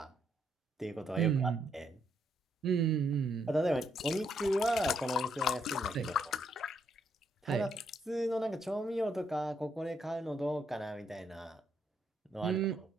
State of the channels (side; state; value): both; normal; correlation 0.75